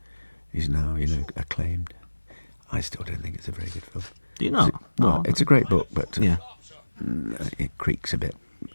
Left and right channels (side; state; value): both; inverted; correlation -1.00